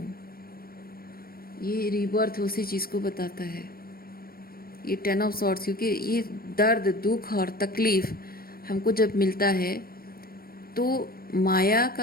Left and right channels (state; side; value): late; right; 0.44 ms